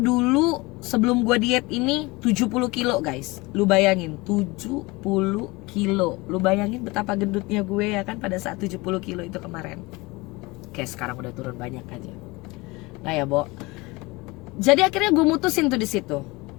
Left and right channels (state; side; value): quieter; right; 23.5 dB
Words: sebelum gue diet ini 70 kilo, guys. Lu bayangin 70 kilo. Lu bayangin betapa gendutnya gue ya kan pada saat 70 kilo itu kemarin. Kayak sekarang udah turun banyak aja. Nah ya, jadi akhirnya gue mutusin tuh di situ.